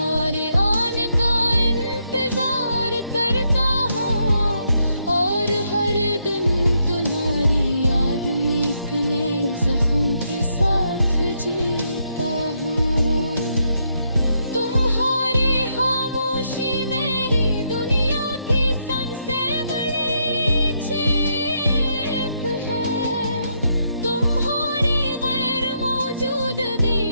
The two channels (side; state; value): both; inverted; correlation -0.78